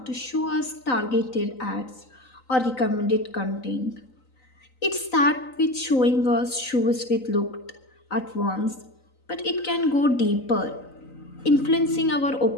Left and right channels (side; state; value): right; late; 3.9 ms